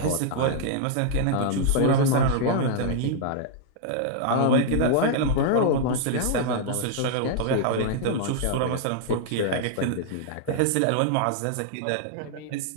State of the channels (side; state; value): both; different; correlation -0.01